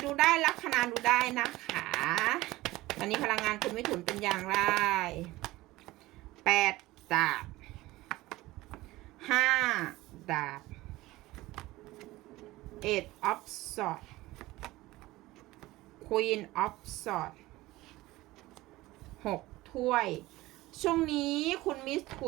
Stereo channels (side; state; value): left; quieter; 18.5 dB